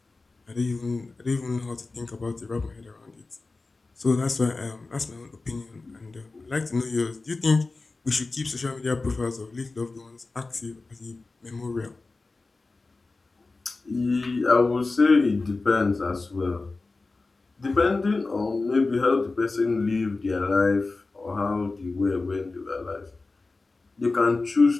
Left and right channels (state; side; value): quieter; right; 3.6 dB